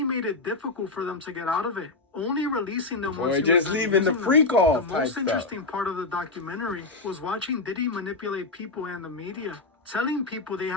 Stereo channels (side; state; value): right; quieter; 3.5 dB